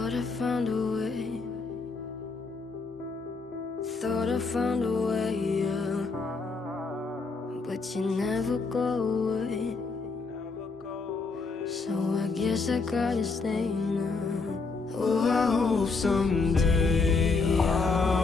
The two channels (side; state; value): right; quieter; 4.2 dB